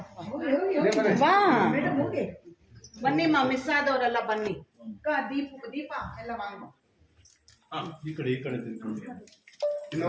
ಬನ್ನಿ ಮಿಸ್ ಆದವರೆಲ್ಲ ಬನ್ನಿ. ದೀಪ ಎಲ್ಲ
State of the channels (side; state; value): both; identical; correlation 1.00